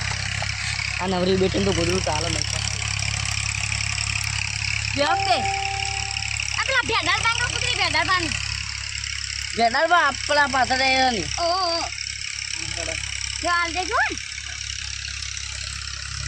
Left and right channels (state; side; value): identical; both; correlation 1.00